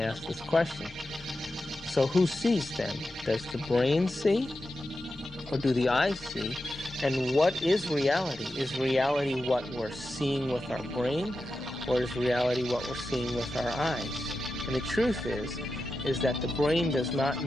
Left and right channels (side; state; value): both; normal; correlation 0.91